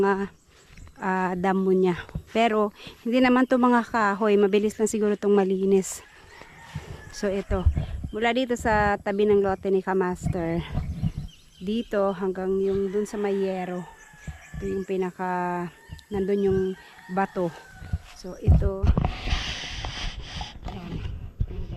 damo niya. Pero hindi naman to mga kahoy, mabilis lang siguro itong malinis. So ito, mula dito sa tabi ng lote ni Kamaster, dito hanggang yung dun sa Mayero, ito yung pinaka nandun yung bato. So ito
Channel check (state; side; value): identical; both; correlation 1.00